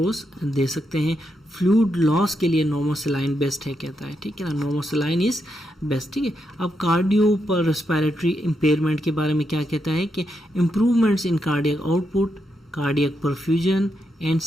दे सकते हैं। फ्लूइड लॉस के लिए नॉर्मोसलाइन बेस्ट है कहता है, ठीक है ना, नॉर्मोसलाइन इज बेस्ट, ठीक है। अब कार्डियो पर रेस्पिरेटरी इम्पेयरमेंट के बारे में क्या कहता है कि improvements in cardiac output, cardiac perfusion and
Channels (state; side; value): normal; both; correlation 0.82